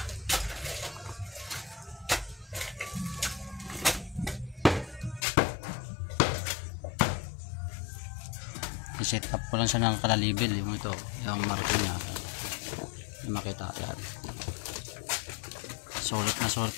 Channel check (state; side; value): drops out; right; at 5.2 s